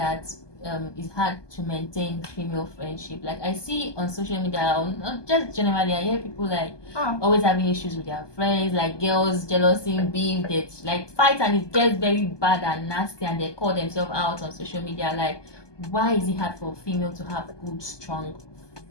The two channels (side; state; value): right; late; 1.2 ms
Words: it's hard to maintain female friendship? Like I see on social media, not just generally, I hear people always having issues with their friends, like girls, jealousy, beef, they fight and it gets very bad and nasty and they call themselves out on social media. Like, why is it hard for a female to have good, strong